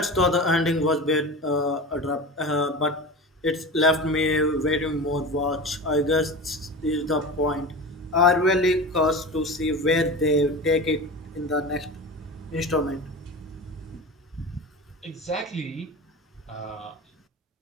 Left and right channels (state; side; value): normal; both; correlation 0.30